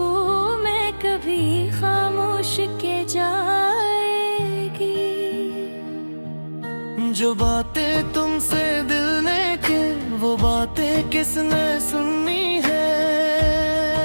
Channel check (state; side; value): inverted; both; correlation -1.00